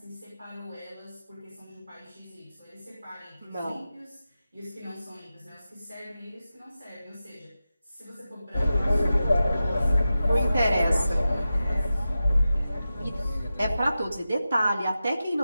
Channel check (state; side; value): inverted; both; correlation -0.93